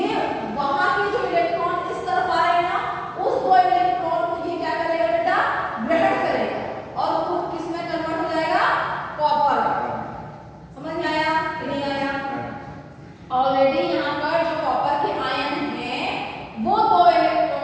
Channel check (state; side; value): identical; both; correlation 1.00